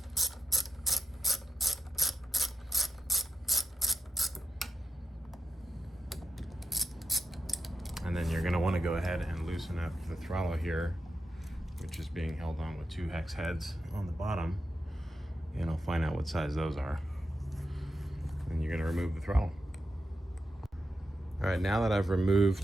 And then you're gonna wanna go ahead and loosen up the throttle here, which is being held on with 2 hex heads on the bottom. And I'll find out what size those are. And you're gonna remove the throttle. All right, now that I've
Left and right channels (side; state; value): both; normal; correlation 0.88